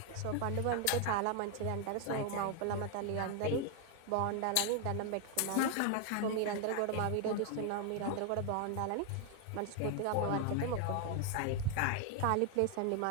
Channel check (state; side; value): different; both; correlation 0.00